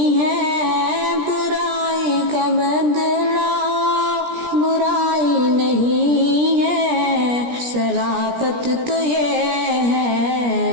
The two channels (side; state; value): left; late; 17 ms